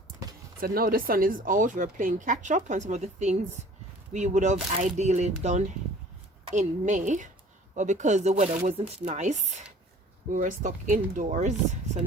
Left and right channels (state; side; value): normal; both; correlation 0.49